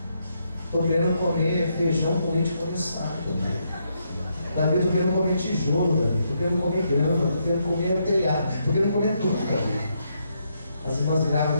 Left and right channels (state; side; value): inverted; both; correlation -0.78